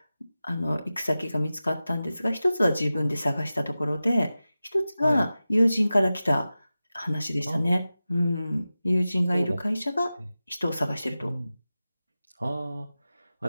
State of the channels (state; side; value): inverted; both; correlation -0.95